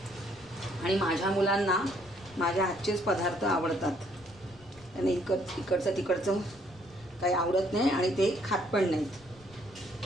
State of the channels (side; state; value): left; noise; rumble, 26 dB below the sound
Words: आणि माझ्या मुलांना माझ्या हातचेच पदार्थ आवडतात। आणि इकडचं तिकडचं काही आवडत नाही आणि ते खात पण नाहीत।